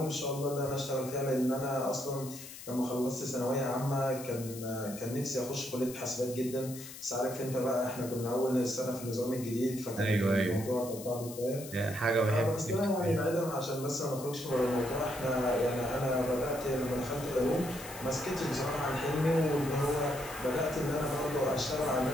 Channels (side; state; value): left; noise; hiss, 13 dB below the sound